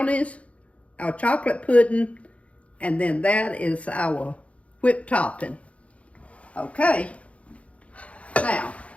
our chocolate pudding, and then that is our whipped topping. Okay, now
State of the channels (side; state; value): right; late; 0.064 ms